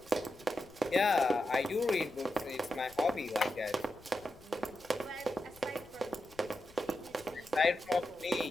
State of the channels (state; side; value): noise; left; rumble, 24 dB below the sound